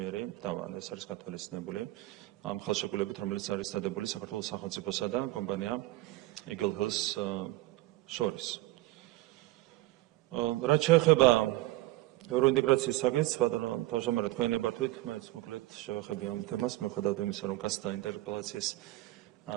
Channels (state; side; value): quieter; left; 18.2 dB